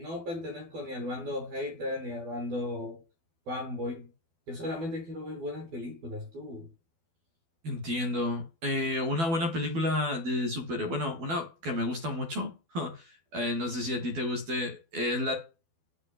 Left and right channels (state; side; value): late; left; 12 ms